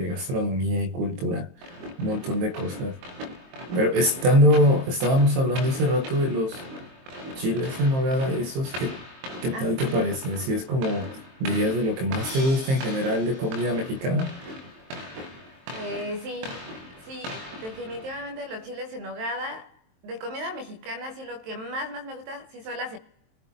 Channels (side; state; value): left; late; 23 ms